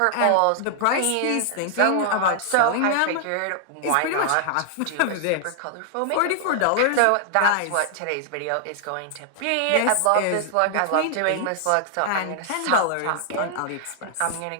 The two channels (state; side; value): different; both; correlation 0.00